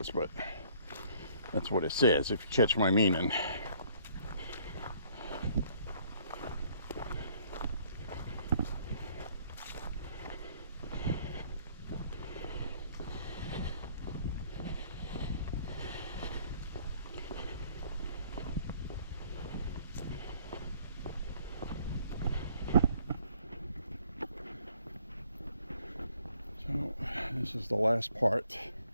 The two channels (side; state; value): both; inverted; correlation -0.61